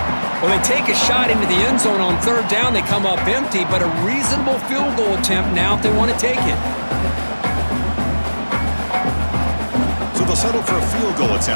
Well, they take a shot into the end zone on 3rd down. They come up empty, but a reasonable field goal attempt now if they want to take it. So they'll settle for a field goal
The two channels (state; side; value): inverted; both; correlation -1.00